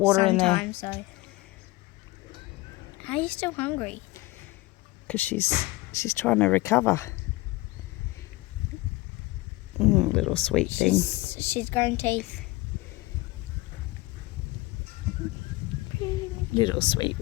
in there. So. Are you still hungry? Because she's trying to recover. Little sweet thing. She's growing teeth. Little sweet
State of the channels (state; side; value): quieter; right; 20.8 dB